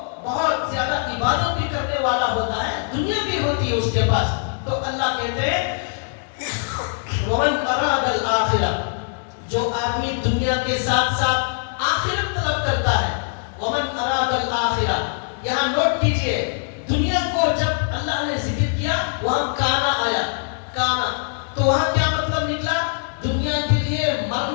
ومن اراد الآخرہ، جو آدمی دنیا کے ساتھ ساتھ آخرت طلب کرتا ہے، ومن اراد الآخرہ، یہاں نوٹ کیجئے دنیا کو جب اللہ نے ذکر کیا وہاں کانا آیا، کانا، تو وہاں کیا مطلب نکلا؟ دنیا کے لیے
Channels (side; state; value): right; silent; 64 dB below the other